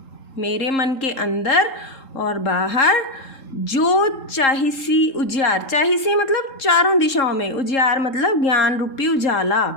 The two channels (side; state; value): right; late; 3.7 ms